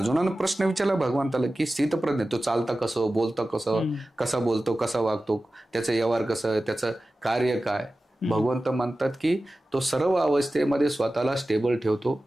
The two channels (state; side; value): normal; both; correlation 0.95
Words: प्रश्न विचारला भगवंताला की स्थितप्रज्ञ तो चालता कसं, बोलतं कसं, कसा बोलतो, कसा वागतो, त्याचं व्यवहार कसं, त्याचं कार्य काय. भगवंत म्हणतात की तो सर्व अवस्थेमध्ये स्वतःला स्टेबल ठेवतो,